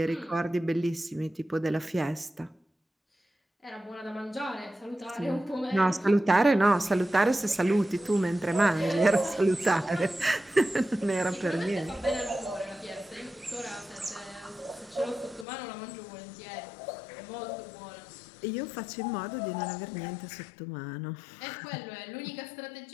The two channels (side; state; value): right; drops out; at 15.5 s